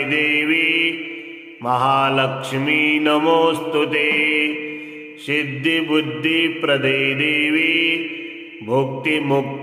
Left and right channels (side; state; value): both; identical; correlation 1.00